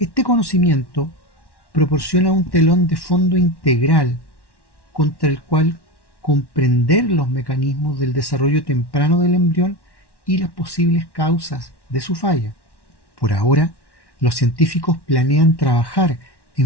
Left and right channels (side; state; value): right; late; 1.1 ms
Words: conocimiento proporciona un telón de fondo integral contra el cual comprender los mecanismos del desarrollo temprano del embrión y las posibles causas de su falla. Por ahora, los científicos planean trabajar